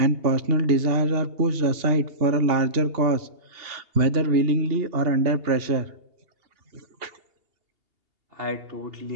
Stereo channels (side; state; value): left; late; 2.8 ms